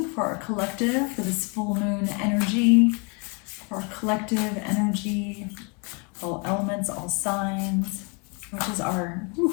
for our collective, for this full moon energy, for our collective energy, all elements, all signs. What does our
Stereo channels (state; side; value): quieter; right; 33.7 dB